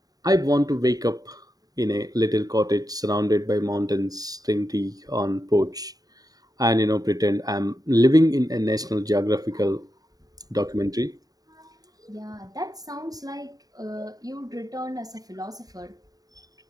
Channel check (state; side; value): late; left; 0.18 ms